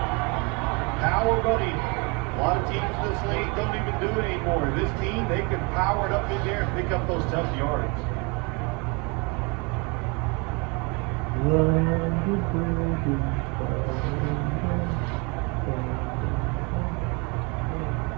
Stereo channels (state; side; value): quieter; left; 30.4 dB